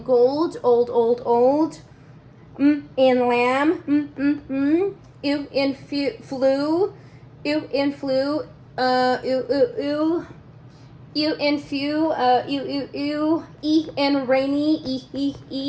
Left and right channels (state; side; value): identical; both; correlation 1.00